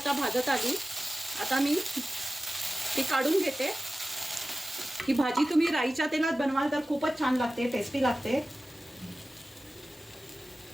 भाजत आली, आता मी ती काढून घेते. ही भाजी तुम्ही राईच्या तेलात बनवाल तर खूपच छान लागते, टेस्टी लागते.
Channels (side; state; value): both; normal; correlation 0.95